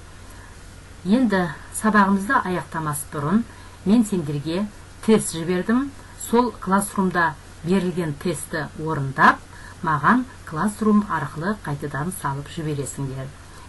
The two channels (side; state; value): both; identical; correlation 1.00